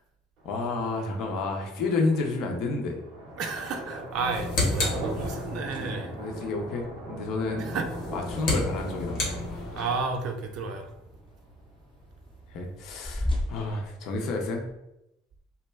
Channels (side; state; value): both; normal; correlation 0.52